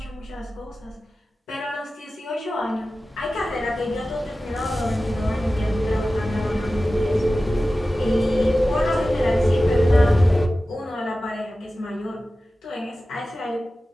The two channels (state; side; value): normal; both; correlation 0.95